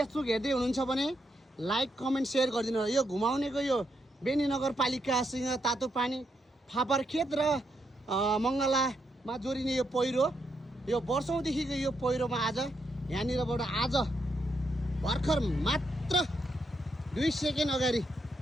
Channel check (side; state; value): both; normal; correlation 0.80